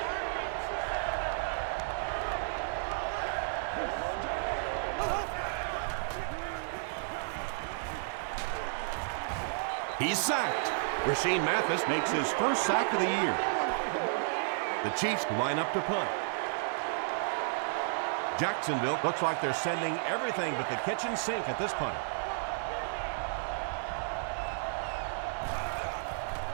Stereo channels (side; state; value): left; silent; digital silence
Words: He's sacked. Rashean Mathis makes his first sack of the year. The Chiefs line up to punt. Jacksonville looks like they're sending everything but the kitchen sink at this punter.